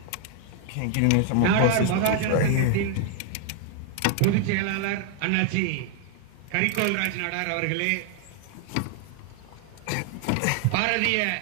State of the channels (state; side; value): different; both; correlation 0.00